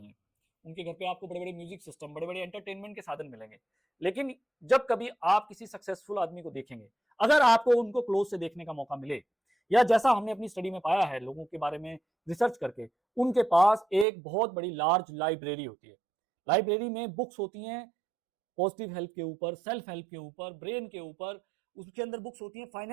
उनके घर पे आपको बड़े बड़े म्यूजिक सिस्टम, बड़े बड़े एंटरटेनमेंट के साधन मिलेंगे। लेकिन जब कभी आप किसी सक्सेसफुल आदमी को देखेंगे, अगर आपको उनको क्लोज से देखने का मौका मिले, या जैसा हमने अपनी स्टडी में पाया है लोगों के बारे में रिसर्च करके, उनके पास एक बहुत बड़ी लार्ज लाइब्रेरी होती है। लाइब्रेरी में बुक्स होती हैं पॉजिटिव हेल्थ के ऊपर, सेल्फ हेल्प के ऊपर, ब्रेन के ऊपर, उसके अंदर बुक्स होती हैं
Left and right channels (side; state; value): left; drops out; at 14.1 s